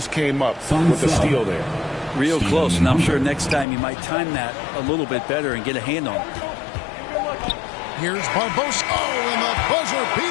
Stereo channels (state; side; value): drops out; right; at 3.7 s